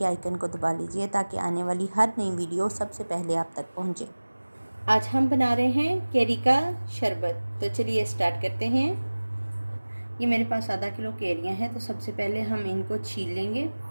आइकन को दबा लीजिए ताकि आने वाली हर नई वीडियो सबसे पहले आप तक पहुंचे। आज हम बना रहे हैं केरी का शरबत, तो चलिए स्टार्ट करते हैं। ये मेरे पास आधा किलो केरियाँ हैं, तो सबसे पहले हम इनको छील लेंगे।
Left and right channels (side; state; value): both; inverted; correlation -1.00